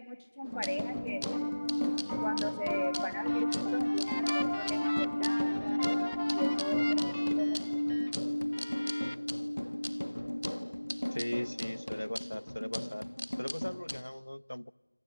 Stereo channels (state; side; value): inverted; both; correlation -1.00